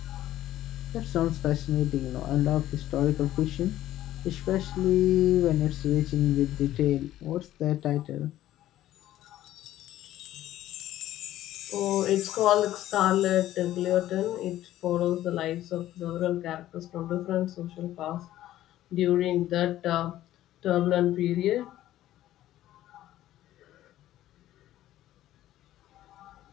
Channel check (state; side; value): quieter; right; 13.7 dB